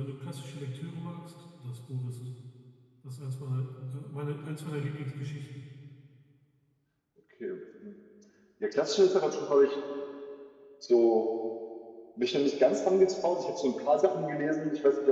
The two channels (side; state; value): both; identical; correlation 1.00